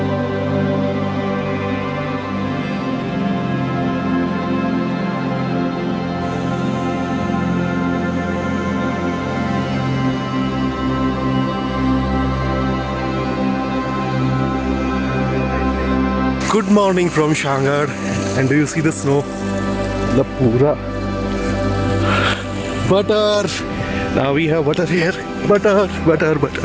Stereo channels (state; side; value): identical; both; correlation 1.00